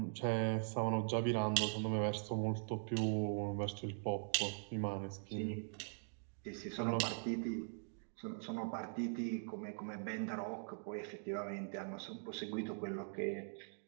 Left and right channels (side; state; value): left; silent; digital silence